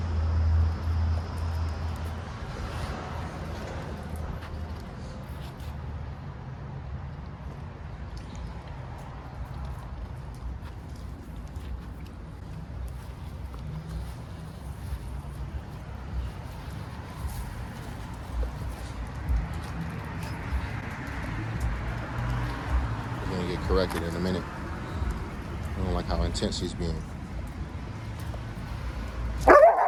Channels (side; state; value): both; identical; correlation 1.00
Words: Corrected in a minute. I don't like how intense he's being. There